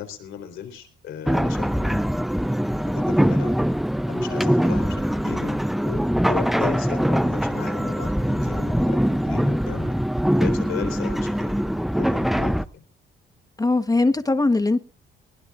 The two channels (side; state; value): both; normal; correlation 0.95